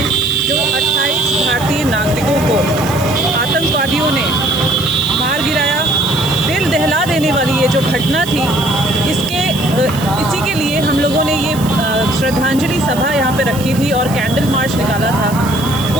जो 28 भारतीय नागरिकों को आतंकवादियों ने मार गिराया, दिल दहला देने वाली ये जो घटना थी, इसी के लिए हम लोगों ने ये श्रद्धांजलि सभा यहाँ पे रखी थी और कैंडल मार्च निकाला था।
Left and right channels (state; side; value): noise; right; hiss, 14 dB below the sound